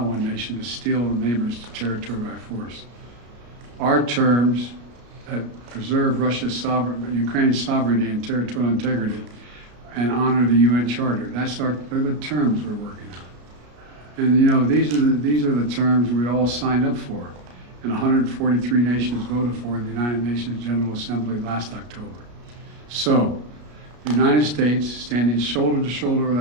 nation to steal a neighbor's territory by force. Our terms that preserve Ukraine's sovereignty and territorial integrity and honor the UN Charter. They're the terms we're working on. And you know, these are the terms we all signed up for and 143 nations voted for in the United Nations General Assembly last October. So, the United States, standing shoulder to shoulder with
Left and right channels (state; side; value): late; left; 33 ms